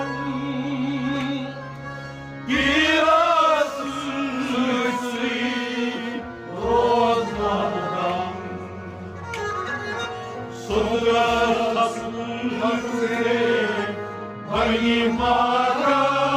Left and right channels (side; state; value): both; identical; correlation 1.00